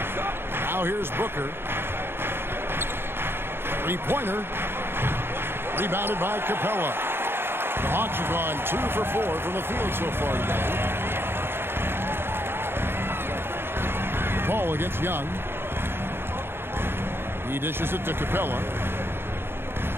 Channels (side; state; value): left; late; 0.11 ms